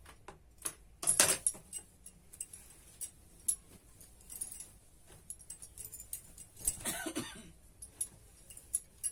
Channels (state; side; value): identical; both; correlation 1.00